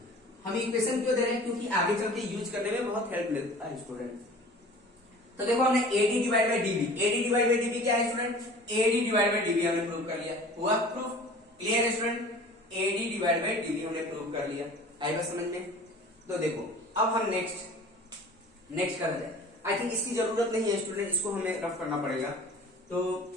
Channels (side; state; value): both; normal; correlation 0.43